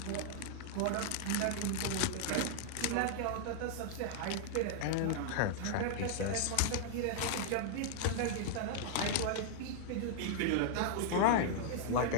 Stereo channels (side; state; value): both; different; correlation -0.01